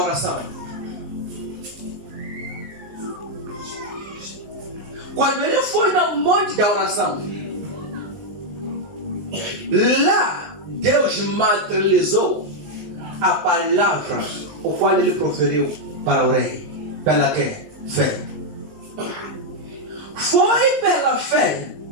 Quando ele foi no monte da oração, lá Deus materializou a palavra o qual ele proferiu para o rei. Pela que? Fé. Foi pela fé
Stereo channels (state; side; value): late; left; 19 ms